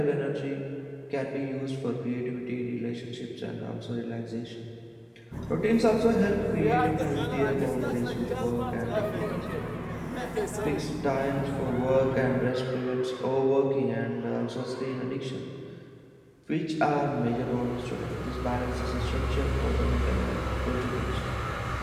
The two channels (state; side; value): identical; both; correlation 1.00